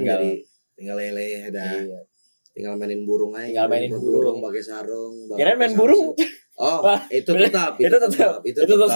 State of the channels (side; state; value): both; inverted; correlation -1.00